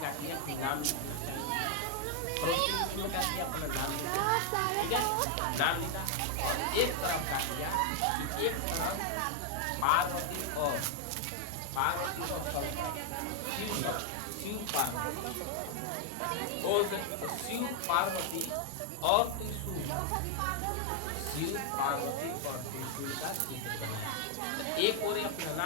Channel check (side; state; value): both; different; correlation 0.00